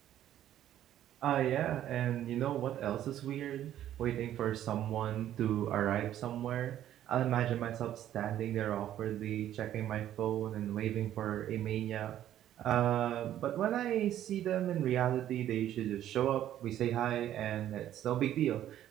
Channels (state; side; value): quieter; left; 11.8 dB